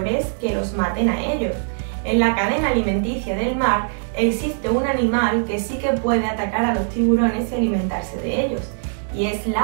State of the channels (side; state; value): left; silent; digital silence